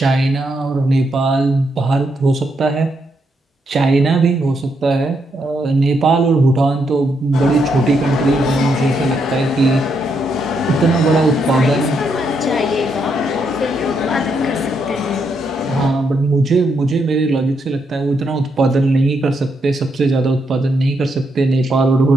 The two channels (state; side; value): normal; both; correlation 0.78